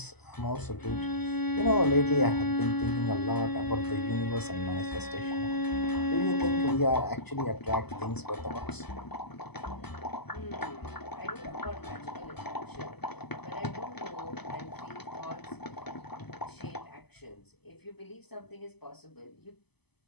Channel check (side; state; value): right; late; 0.98 ms